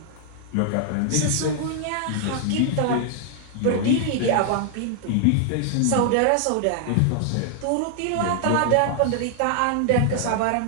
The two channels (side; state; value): both; different; correlation 0.00